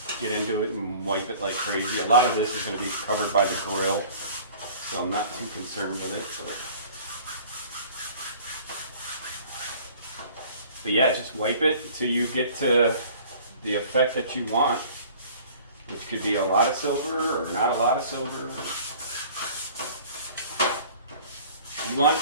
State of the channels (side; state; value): both; inverted; correlation -0.48